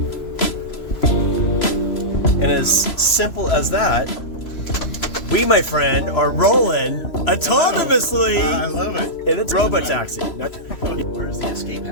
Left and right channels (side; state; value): right; late; 3.0 ms